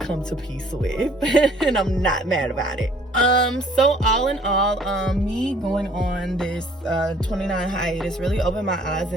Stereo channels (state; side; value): normal; both; correlation 0.57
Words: to peace with. And I'm not mad about it. So all in all, me going on this 29 hiatus really opened my eyes